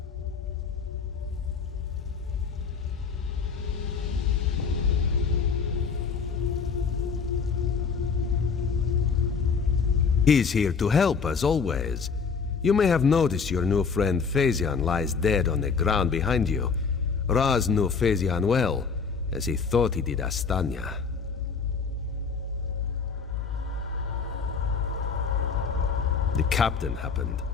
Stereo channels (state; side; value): quieter; right; 5.6 dB